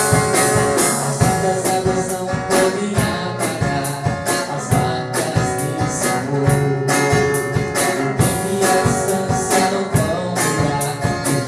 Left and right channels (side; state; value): both; identical; correlation 1.00